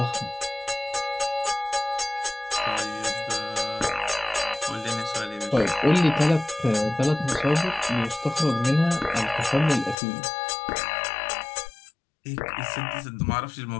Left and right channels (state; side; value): drops out; right; at 10.0 s